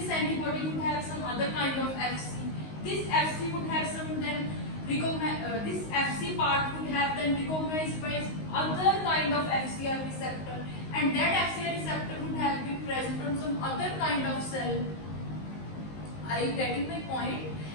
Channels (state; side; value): late; right; 19 ms